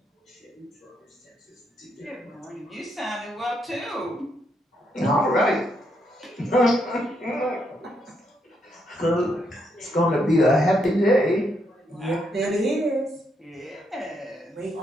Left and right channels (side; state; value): both; normal; correlation 0.77